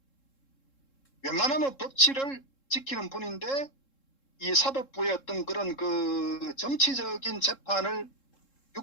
웬만하면 법치를 지키는 분인데 이 사법부의 어떤 그런 정치적인 재판을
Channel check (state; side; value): late; right; 3.7 ms